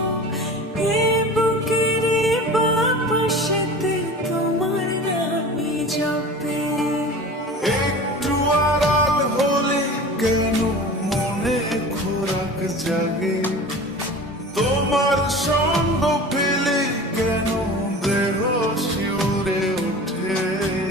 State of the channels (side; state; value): both; normal; correlation 0.37